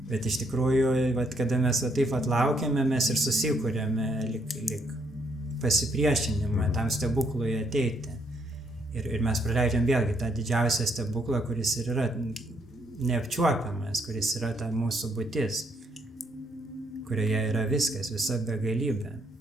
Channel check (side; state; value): both; normal; correlation 0.72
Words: Bet iš tikrųjų, kada mes taip laukiame, mes ir susikūrėme lyg pasipriešinimą tam stebuklui ateiti. Ir mes praleidžiam vėlgi tą didžiausią stebuklą, kuris ir yra neapčiuopiamas, kuris yra ta mūsų būtis, kurioje yra viskas, visa begalybė.